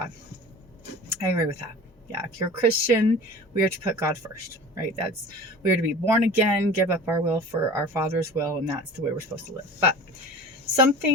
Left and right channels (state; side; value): normal; both; correlation 0.39